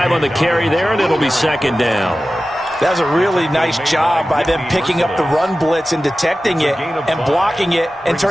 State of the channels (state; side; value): normal; both; correlation 0.95